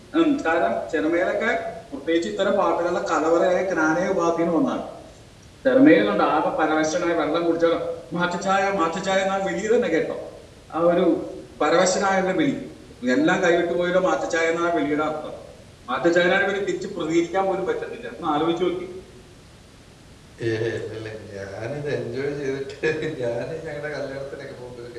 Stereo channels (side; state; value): both; identical; correlation 1.00